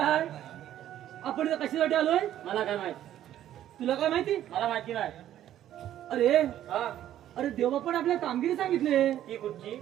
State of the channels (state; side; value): quieter; left; 11.9 dB